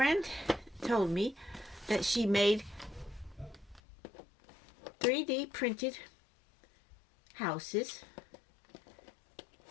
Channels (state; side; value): drops out; right; at 3.8 s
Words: told me that she made 3D printed houses,